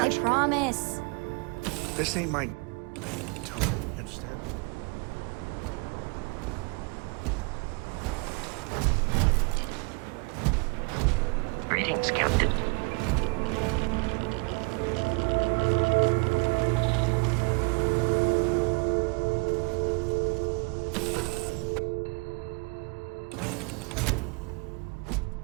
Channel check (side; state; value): left; quieter; 30.7 dB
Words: I promise. This ain't my... You understand? Greetings, Captain.